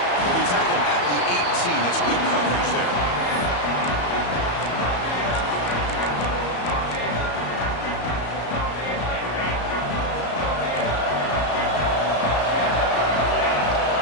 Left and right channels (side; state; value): right; late; 34 ms